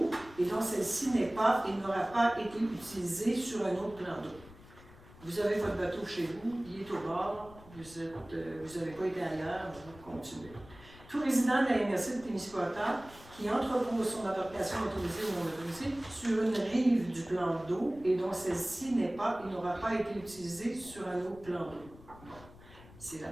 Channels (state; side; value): noise; left; rumble, 20 dB below the sound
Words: et dont celle-ci n'est pas et n'aura pas été utilisée sur un autre plan d'eau. Vous avez votre bateau chez vous, il est au bord, vous n'avez pas été ailleurs, vous continuez. Tout résident de la MRC de Témiscouata qui entrepose son embarcation motorisée ou non motorisée sur une rive du plan d'eau et dont celle-ci n'est pas et n'aura pas été utilisée sur un autre plan d'eau. C'est la